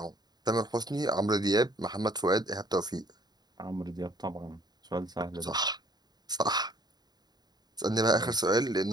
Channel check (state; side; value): late; left; 0.20 ms